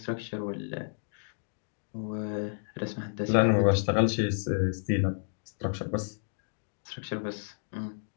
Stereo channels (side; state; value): right; silent; digital silence